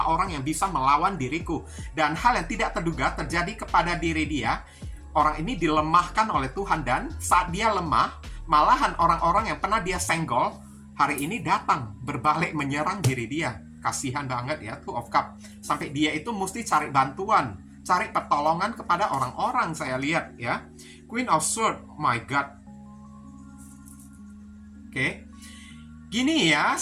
orang yang bisa melawan diriku? Dan hal yang tidak terduga terjadi kepada diri dia. Orang ini dilemahkan oleh Tuhan, dan saat dia lemah, malahan orang-orang yang pernah dia senggol hari ini datang berbalik menyerang diri dia. Kasihan banget ya, Two of Cups. Sampai dia itu mesti cari bantuan, cari pertolongan kepada orang-orang, saya lihat ya. Queen of Swords, my God. Oke. Gini ya,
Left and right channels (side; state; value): both; identical; correlation 1.00